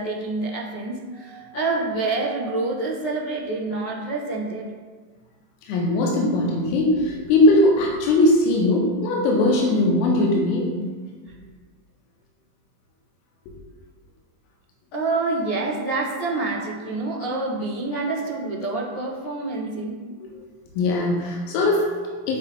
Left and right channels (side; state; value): right; late; 23 ms